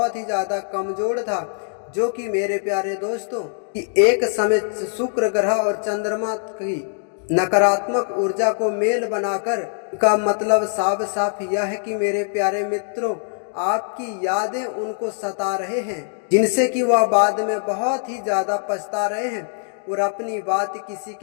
ही ज्यादा कमजोर था, जो कि मेरे प्यारे दोस्तों कि एक समय शुक्र ग्रह और चंद्रमा की नकारात्मक ऊर्जा को मेल बनाकर का मतलब साफ साफ यह है कि मेरे प्यारे मित्रों आपकी यादें उनको सता रहे हैं, जिनसे कि वह बाद में बहुत ही ज्यादा पछता रहे हैं और अपनी बात किसी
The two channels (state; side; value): silent; right; digital silence